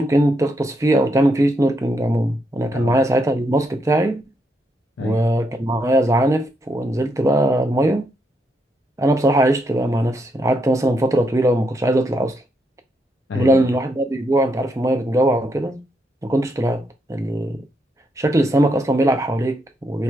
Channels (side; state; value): both; normal; correlation 0.79